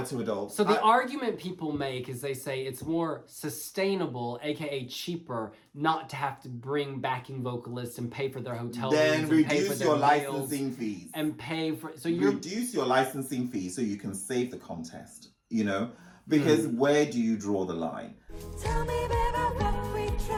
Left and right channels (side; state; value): both; identical; correlation 1.00